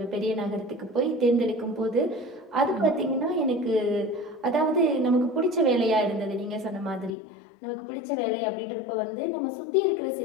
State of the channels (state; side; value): drops out; right; at 7.2 s